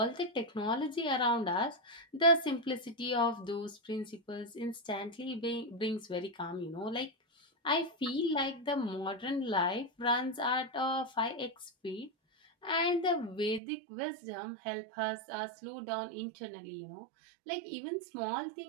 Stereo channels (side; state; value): left; drops out; at 13.6 s